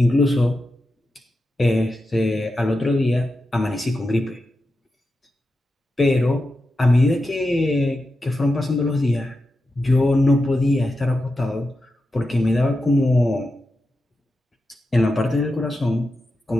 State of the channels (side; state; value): both; normal; correlation 0.89